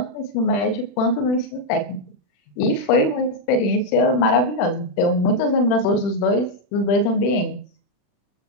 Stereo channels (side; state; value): right; late; 40 ms